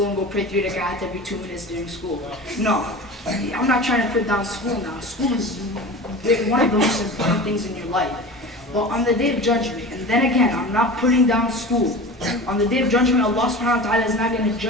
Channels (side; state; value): both; normal; correlation 0.34